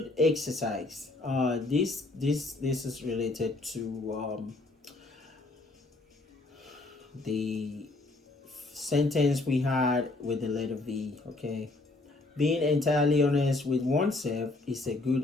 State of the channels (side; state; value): right; quieter; 3.1 dB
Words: exercise. This is related to the sentence we had with the letter V, okay. Being entirely honest with oneself is a